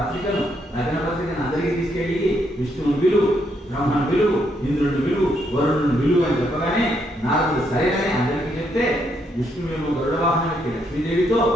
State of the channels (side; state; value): both; normal; correlation 0.75